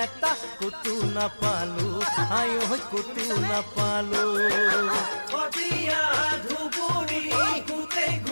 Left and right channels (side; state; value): both; inverted; correlation -1.00